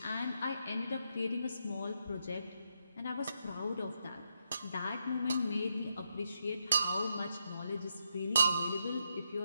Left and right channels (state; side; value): inverted; both; correlation -0.81